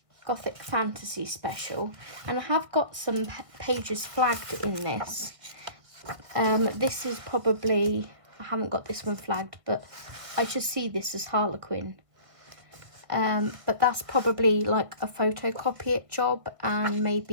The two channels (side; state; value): left; late; 1.6 ms